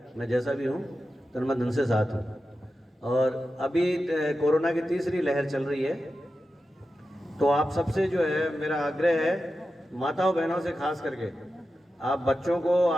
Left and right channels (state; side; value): normal; both; correlation 0.91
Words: मैं जैसा भी हूँ तो मैं धन से साथ हूँ। और अभी कोरोना की तीसरी लहर चल रही है, तो आप सबसे जो है मेरा आग्रह है, माताओं बहनों से खास करके, आप बच्चों को,